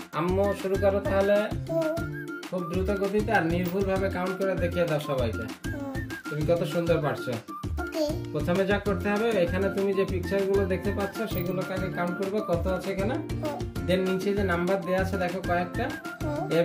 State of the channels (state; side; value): identical; both; correlation 1.00